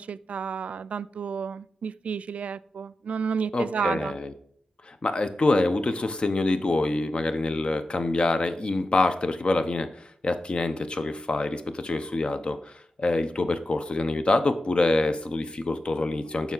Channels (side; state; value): both; normal; correlation 0.91